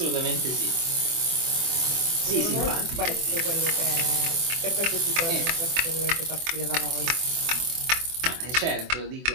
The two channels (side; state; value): left; late; 24 ms